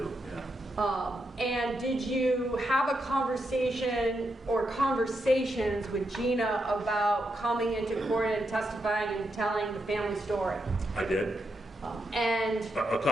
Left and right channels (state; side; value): normal; both; correlation 0.83